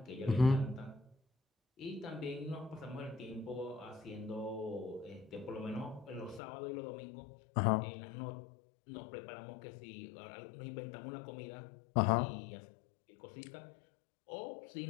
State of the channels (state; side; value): drops out; right; at 6.4 s